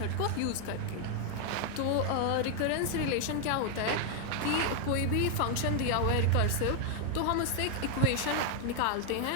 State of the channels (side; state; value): both; different; correlation 0.00